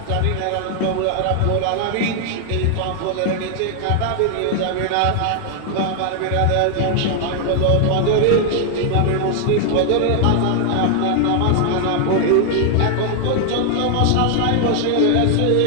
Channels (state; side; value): different; both; correlation 0.00